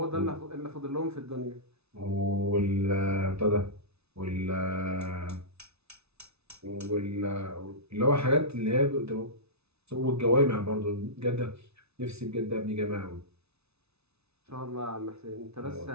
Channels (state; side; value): late; left; 0.80 ms